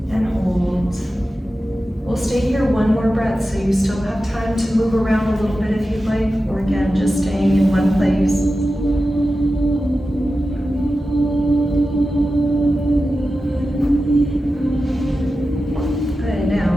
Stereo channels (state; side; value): normal; both; correlation 0.92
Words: And hold. We'll stay here one more breath so you still have time to move around a little bit if you'd like, or again, just staying in one place. Good, now